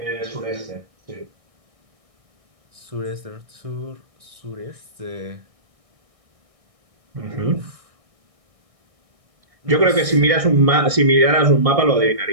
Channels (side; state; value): left; late; 1.6 ms